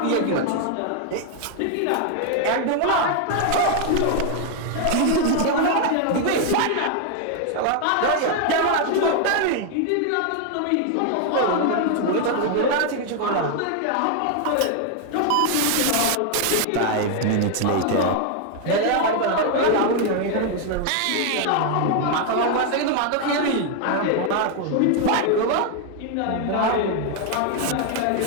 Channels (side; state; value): both; different; correlation 0.00